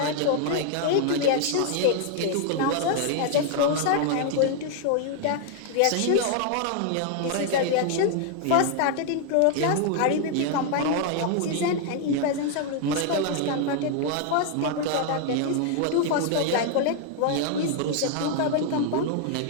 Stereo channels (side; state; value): both; different; correlation 0.00